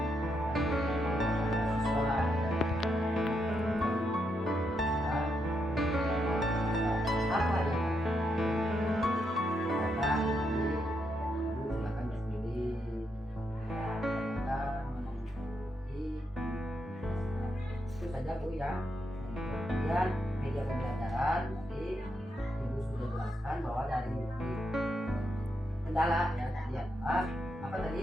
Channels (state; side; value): normal; both; correlation 0.81